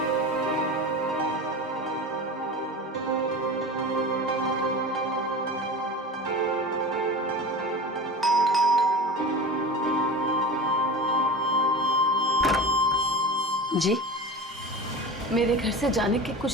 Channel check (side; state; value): both; normal; correlation 0.31